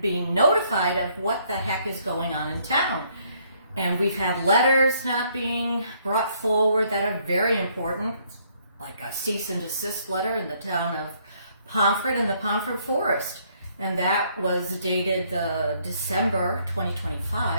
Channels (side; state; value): both; inverted; correlation -0.67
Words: being notified of what the heck is going on in town. And we've had letters not being brought forward that are very important, like a cease and desist letter in the town of Pomfret and the Pomfret Forest. And that was dated December